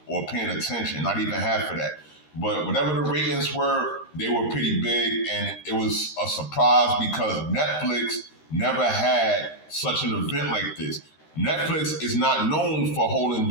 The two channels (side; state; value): right; late; 13 ms